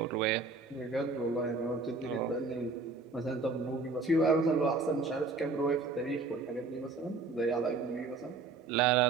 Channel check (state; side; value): quieter; left; 4.0 dB